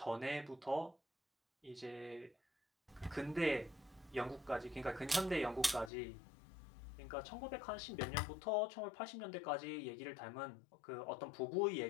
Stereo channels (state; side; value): drops out; right; at 5.9 s